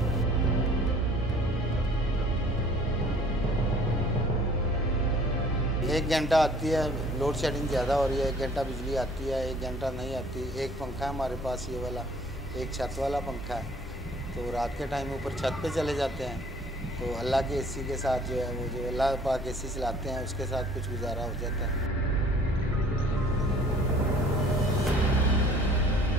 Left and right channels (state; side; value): normal; both; correlation 0.54